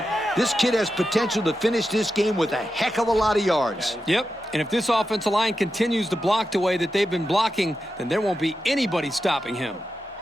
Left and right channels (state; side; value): normal; both; correlation 0.90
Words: This kid has potential to finish this game with a heck of a lot of yards. Yep, and if this offensive line continues to block the way that they've been blocking, then there won't be anybody stopping him.